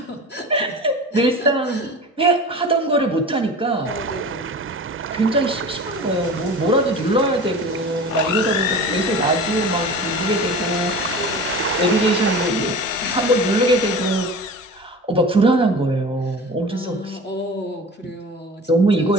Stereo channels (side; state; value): both; normal; correlation 0.35